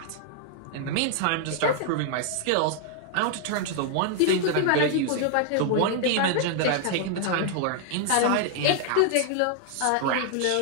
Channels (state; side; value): different; both; correlation 0.00